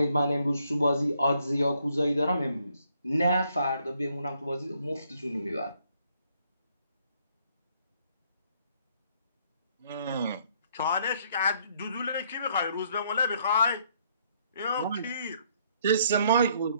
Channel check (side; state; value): both; inverted; correlation -0.68